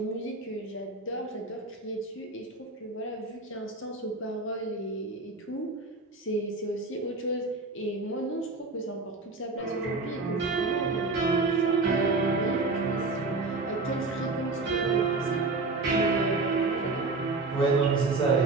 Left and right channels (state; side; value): quieter; left; 3.6 dB